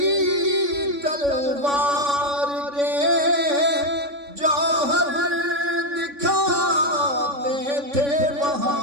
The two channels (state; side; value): late; left; 3.5 ms